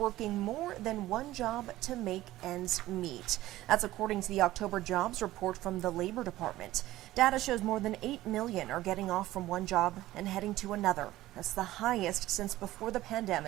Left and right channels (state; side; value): quieter; left; 15.9 dB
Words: more than one job to make ends meet. That's according to the October jobs report from the Labor Department. Data shows more than 8 million are getting off from one job and heading to another. That's the highest since before the